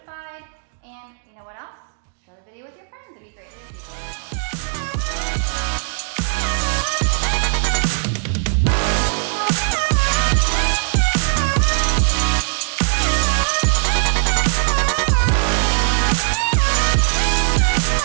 And you know what else? Share the video with your friends. It'd be greatly appreciated.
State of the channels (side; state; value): left; silent; digital silence